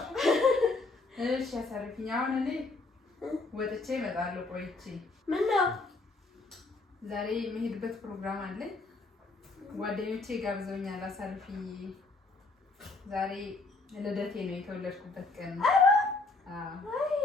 እሺ አሳርፊኝ። አሁን እኔ ወጥቼ እመጣለሁ ቆይቼ። ምነው? ዛሬ የምሄድበት ፕሮግራም አለኝ። ጓደኞቼ ጋብዘውኛል። አሳርፊኝ። ዛሬ ልደቴ ነው፣ የተወለድኩበት ቀን ነው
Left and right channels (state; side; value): quieter; right; 3.5 dB